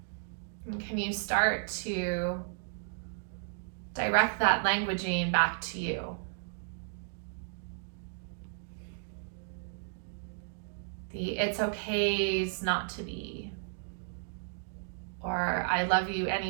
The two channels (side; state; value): left; silent; digital silence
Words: And can you start to direct that languaging back to you? The it's okay's not to be, or I love you